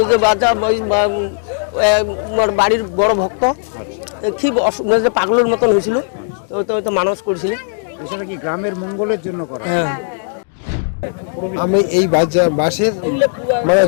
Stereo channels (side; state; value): right; silent; digital silence